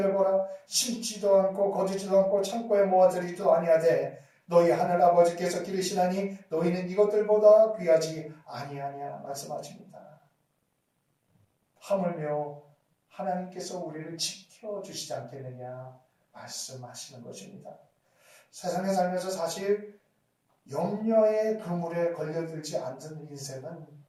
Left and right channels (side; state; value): both; identical; correlation 1.00